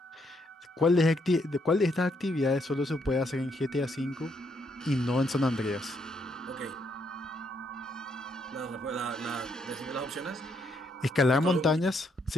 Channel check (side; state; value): both; normal; correlation 0.74